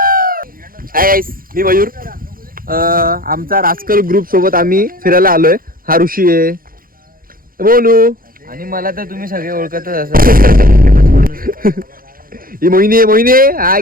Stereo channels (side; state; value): left; late; 0.42 ms